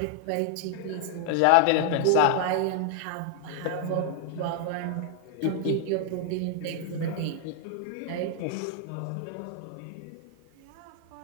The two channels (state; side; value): different; both; correlation 0.00